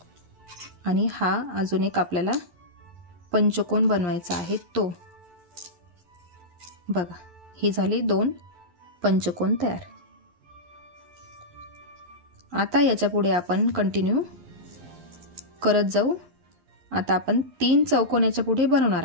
आणि हा अजून एक आपल्याला पंचकोन बनवायचा आहे तो. बघा हे झाले 2 पंचकोन तयार. आता याच्या पुढे आपण कंटिन्यू करत जाऊ. आता आपण 3 चौकोन याच्या पुढे बनवणार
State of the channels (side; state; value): left; late; 11 ms